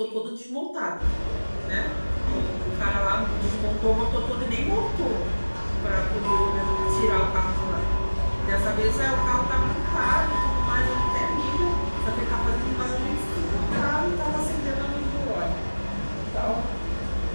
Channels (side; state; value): both; inverted; correlation -1.00